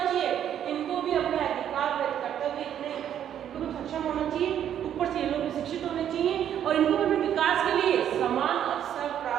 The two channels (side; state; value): left; quieter; 10.0 dB